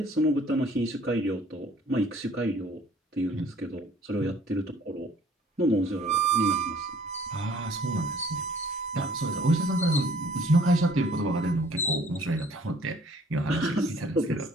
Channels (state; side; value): normal; both; correlation 0.56